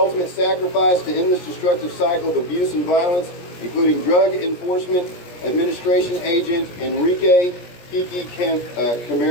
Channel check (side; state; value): right; late; 17 ms